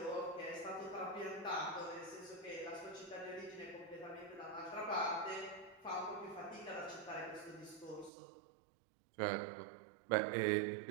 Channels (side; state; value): left; drops out; at 8.1 s